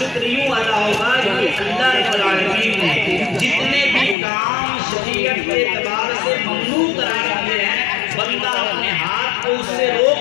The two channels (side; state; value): right; drops out; at 4.2 s